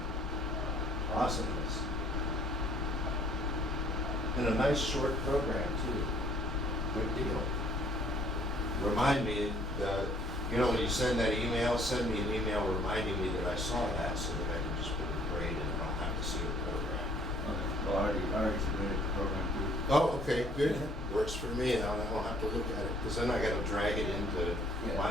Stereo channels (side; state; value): both; normal; correlation 0.60